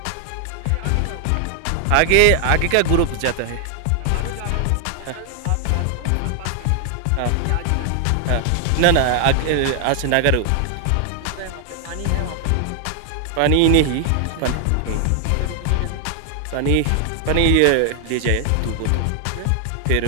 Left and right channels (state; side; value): different; both; correlation 0.00